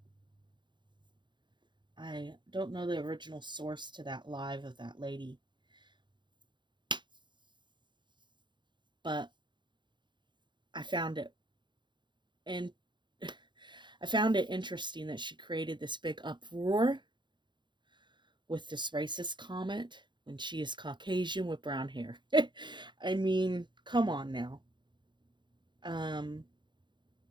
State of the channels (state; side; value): late; left; 0.22 ms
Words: I don't know the original source to that live of that lady, but I found it and I found it interesting that she created this big uproar with this racist comment when she is Caucasian with brown hair. I mean, come on now. Um,